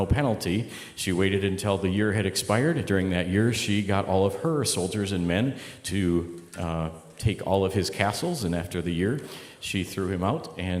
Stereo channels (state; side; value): identical; both; correlation 1.00